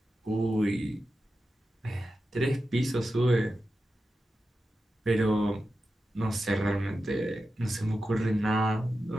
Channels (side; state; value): both; normal; correlation 0.91